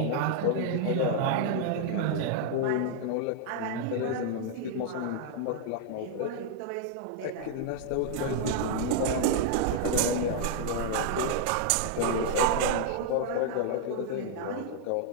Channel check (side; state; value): both; different; correlation -0.01